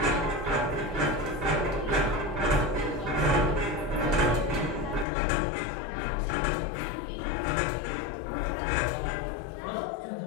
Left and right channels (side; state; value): right; drops out; at 5.1 s